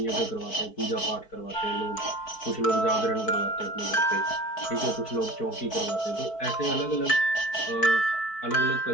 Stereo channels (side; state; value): right; late; 4.6 ms